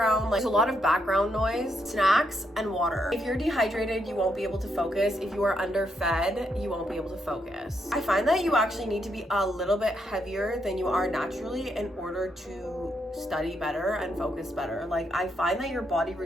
Like there's a lot of background noise, snacks, and water. If you're dehydrated, you won't be able to focus. If you are underfed, you won't be able to focus. I find that you actually need to be a little bit heavier than you are naturally in order to study better and focus better. Like I find that your body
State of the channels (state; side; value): normal; both; correlation 0.78